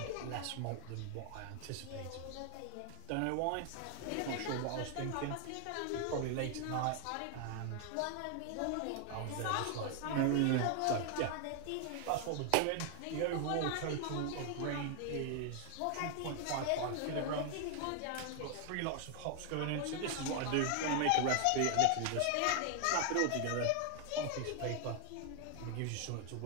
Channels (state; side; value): different; both; correlation 0.00